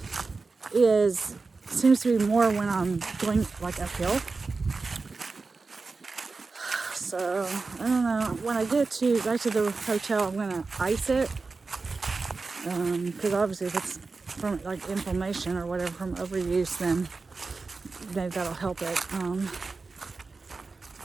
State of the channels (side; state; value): left; quieter; 4.1 dB